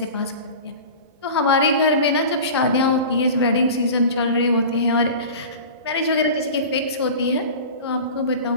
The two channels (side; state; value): both; inverted; correlation -0.35